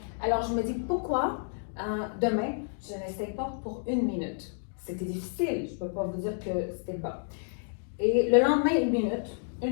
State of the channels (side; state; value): right; silent; digital silence